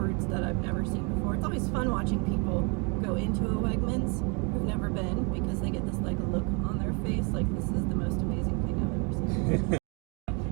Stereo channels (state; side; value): quieter; left; 33.8 dB